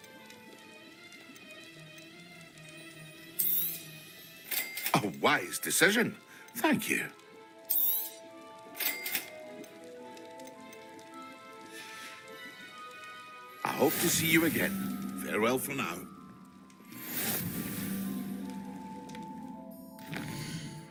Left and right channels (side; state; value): both; identical; correlation 1.00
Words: A wise decision. Thank you. I hope to see you again. Farewell for now.